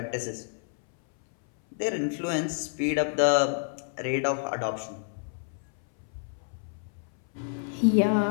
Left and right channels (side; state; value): right; silent; 59 dB below the other